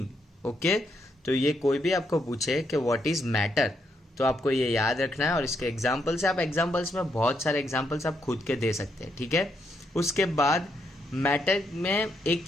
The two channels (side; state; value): both; normal; correlation 0.77